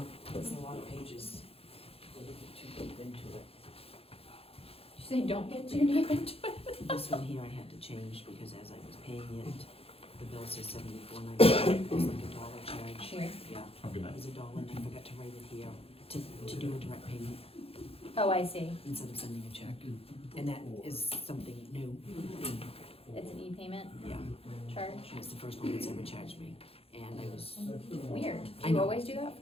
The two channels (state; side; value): late; right; 0.28 ms